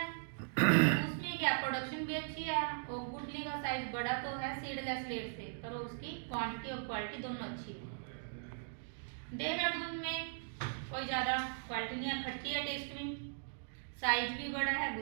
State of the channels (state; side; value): silent; left; digital silence